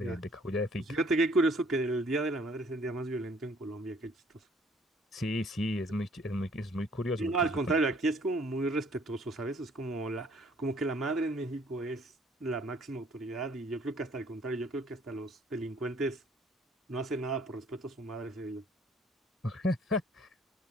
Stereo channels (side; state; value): both; normal; correlation 0.59